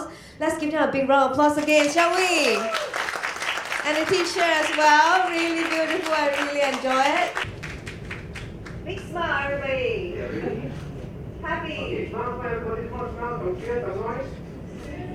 Let's give them a big round of applause again, shall we? And the teacher as well, really beautiful, I really enjoy it. Big smile, everybody. Happy. Alright,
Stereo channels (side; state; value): both; identical; correlation 1.00